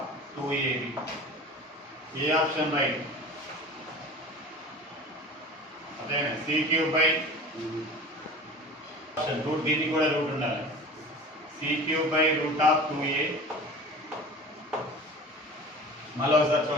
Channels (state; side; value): normal; both; correlation 0.37